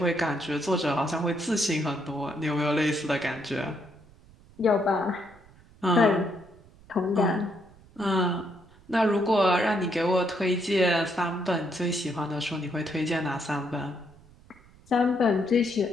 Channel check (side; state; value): right; noise; rumble, 25 dB below the sound